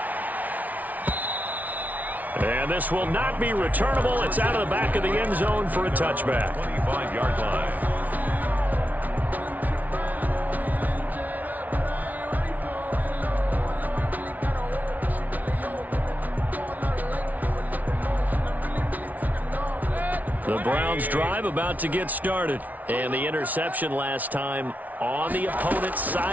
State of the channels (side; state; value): left; late; 0.075 ms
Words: And this will not be returnable. It's out of the back of the end zone for a touchback. 25-yard line. The Browns drive about to get started. And the interception last time on the opponent's